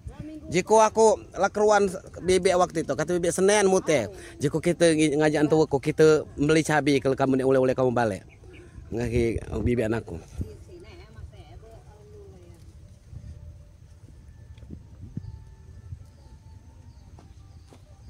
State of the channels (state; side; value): identical; both; correlation 1.00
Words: Jika aku lakeruan bebek waktu itu kata bebek Senin mute. Jika kita ngajak antu aku kita beli cabai kalau kamu oleh kamu balik. Ngaki bebek anakku.